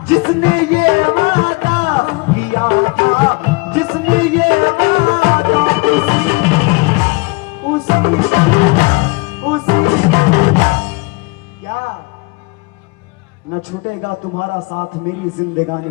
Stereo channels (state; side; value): quieter; right; 27.3 dB